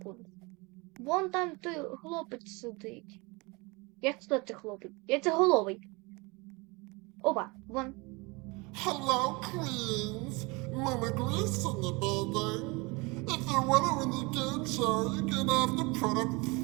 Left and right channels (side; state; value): left; quieter; 26.6 dB